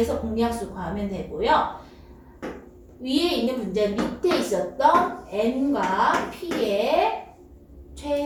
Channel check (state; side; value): identical; both; correlation 1.00